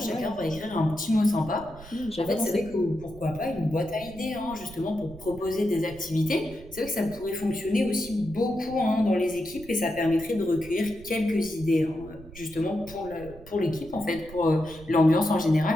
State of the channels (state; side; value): noise; right; rumble, 18 dB below the sound